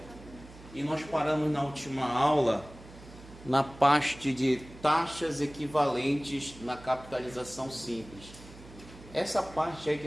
E nós paramos na última aula na parte de taxas equivalentes na capitalização simples. Essa parte aí que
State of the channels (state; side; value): noise; right; hum, 19 dB below the sound